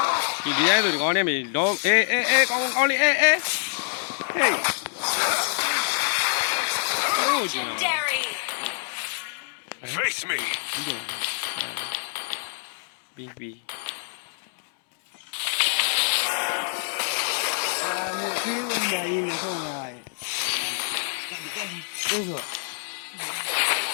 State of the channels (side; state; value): right; silent; digital silence